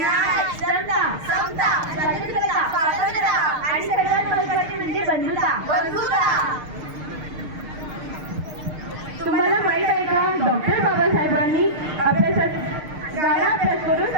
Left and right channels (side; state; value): left; late; 6.6 ms